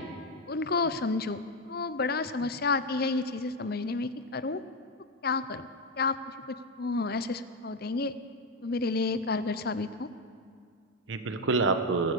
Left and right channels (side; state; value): both; normal; correlation 0.08